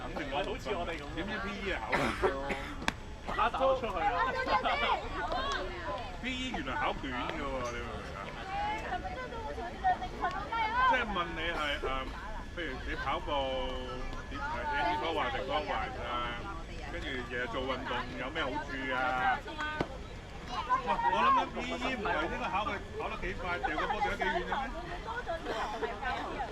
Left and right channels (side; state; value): both; identical; correlation 1.00